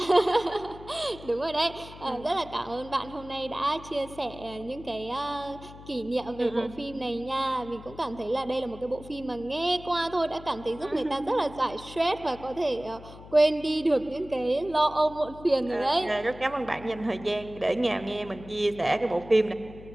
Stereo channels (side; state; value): left; noise; hum, 17 dB below the sound